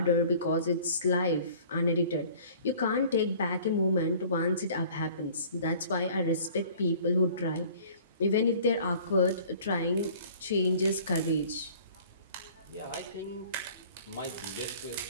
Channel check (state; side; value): inverted; both; correlation -0.50